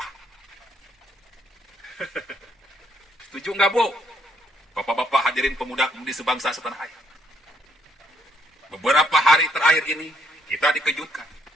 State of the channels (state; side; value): normal; both; correlation 0.70